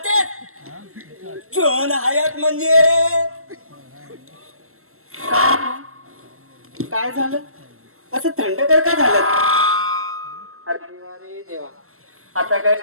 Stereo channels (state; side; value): late; left; 0.62 ms